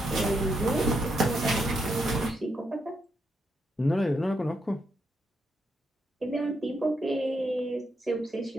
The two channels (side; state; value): both; normal; correlation 0.81